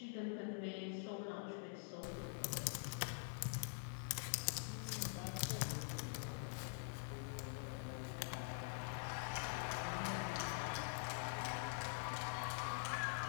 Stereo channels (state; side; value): silent; right; digital silence